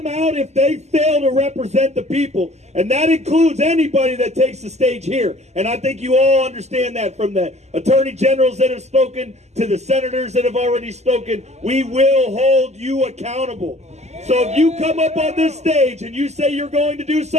out if they fail to represent the people. And that includes anybody that takes the stage here. And I think you all understand that, from the attorney generals that have spoken to the senators that have already spoken. We will hold you accountable. So if you come up on this stage and you say you're going to do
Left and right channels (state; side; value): late; left; 0.33 ms